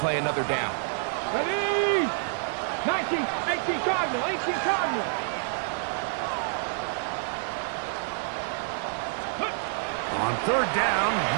another down. Ready? 19, 18 Cardinal, 18 Cardinal. On third down,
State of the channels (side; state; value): left; silent; digital silence